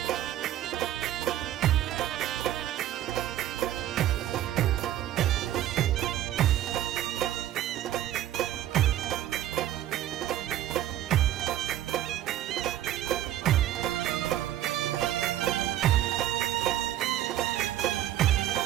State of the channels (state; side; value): quieter; left; 12.8 dB